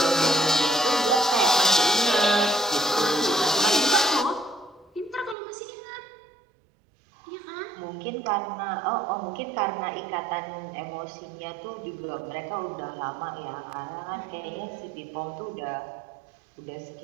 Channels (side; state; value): left; drops out; at 5.4 s